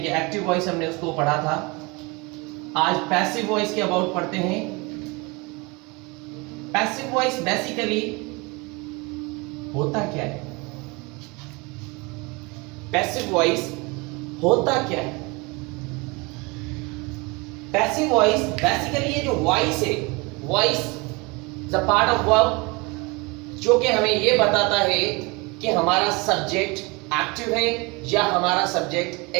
एक्टिव वॉइस हमने उसको पढ़ा था। आज पैसिव वॉइस के अबाउट पढ़ते हैं। पैसिव वॉइस बेसिकली होता क्या है? पैसिव वॉइस होता क्या है? पैसिव वॉइस बेसिकली ये जो वॉइस है, voice the part of verb जो कि हमें ये बताता है कि हमारा सब्जेक्ट एक्टिव है या हमारा सब्जेक्ट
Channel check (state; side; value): quieter; left; 27.0 dB